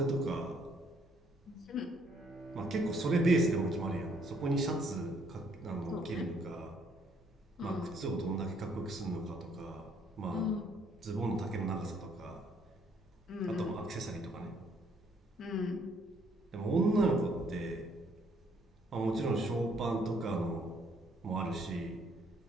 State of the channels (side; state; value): both; normal; correlation 0.66